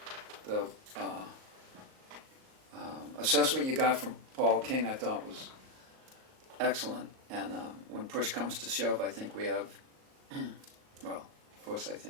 The assessment you got from Paul King, I thought, was excellent. And when push comes to shove, I think we have, well, of course I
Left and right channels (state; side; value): late; left; 38 ms